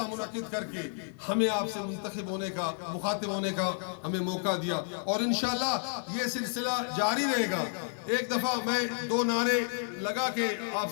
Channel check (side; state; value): right; silent; 57 dB below the other